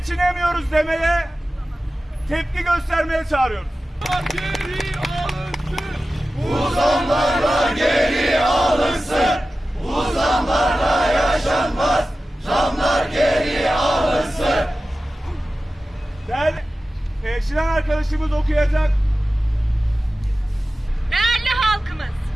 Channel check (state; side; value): normal; both; correlation 0.95